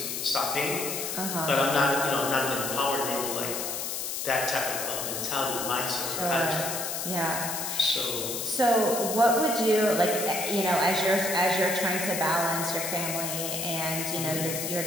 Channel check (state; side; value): noise; left; hiss, 3 dB below the sound